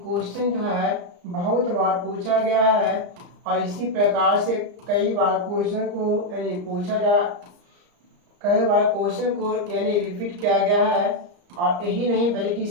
क्वेश्चन जो है बहुत बार पूछा गया है और इसी प्रकार से कई बार क्वेश्चन को यानी पूछा जा, कई बार क्वेश्चन को यानी रिपीट किया गया है। और यही नहीं बल्कि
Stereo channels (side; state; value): left; late; 34 ms